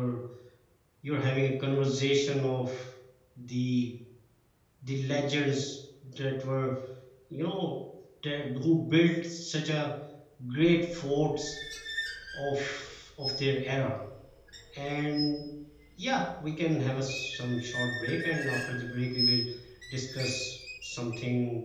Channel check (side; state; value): both; identical; correlation 1.00